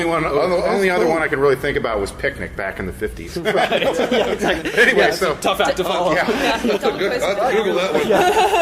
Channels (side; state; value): both; identical; correlation 1.00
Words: other one I can really think about was Picnic back in the 50s. Right. Yeah, exactly. Anyway, so tough act to follow. Google